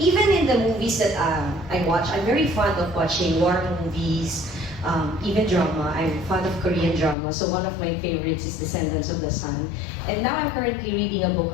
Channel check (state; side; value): drops out; right; at 7.2 s